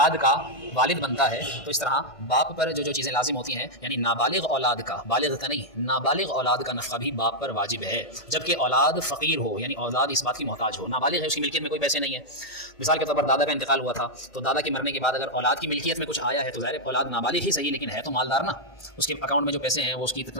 کا والد بنتا ہے تو اس طرح باپ پر جو چیزیں لازم ہوتی ہیں، یعنی نابالغ اولاد کا، بالغ کا نہیں، نابالغ اولاد کا نفقہ بھی باپ پر واجب ہے، جبکہ اولاد فقیر ہو، یعنی اولاد اس بات کی محتاج ہو، نابالغ ہے، اس کی ملکیت میں کوئی پیسے نہیں ہے۔ مثال کے طور پر دادا کا انتقال ہوا تھا، تو دادا کے مرنے کے بعد اگر اولاد کی ملکیت میں کچھ آیا ہے تو ظاہر اولاد نابالغ ہی صحیح لیکن ہے تو مالدار نا، اس کے اکاؤنٹ میں جو پیسے ہیں وہ اس کی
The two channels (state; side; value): late; right; 1.5 ms